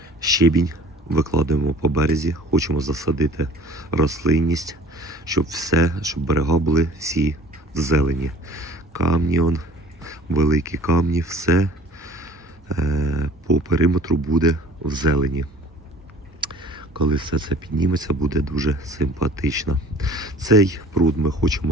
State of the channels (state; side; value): normal; both; correlation 0.49